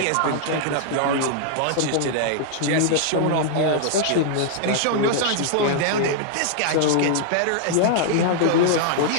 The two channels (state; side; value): different; both; correlation -0.01